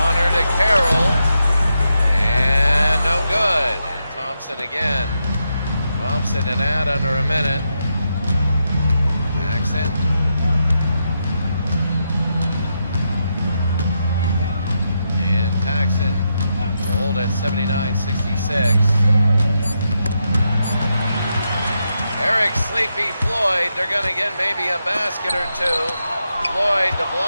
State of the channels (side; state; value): both; inverted; correlation -0.84